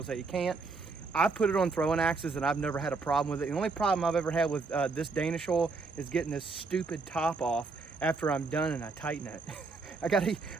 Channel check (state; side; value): quieter; left; 4.1 dB